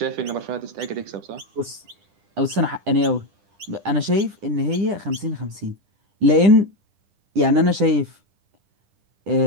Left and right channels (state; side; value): late; left; 10 ms